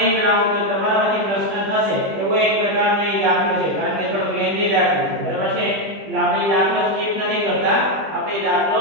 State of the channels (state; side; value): late; left; 20 ms